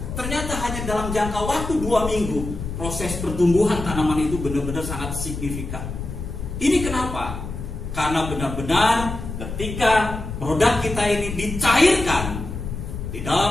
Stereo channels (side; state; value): left; noise; rumble, 7 dB below the sound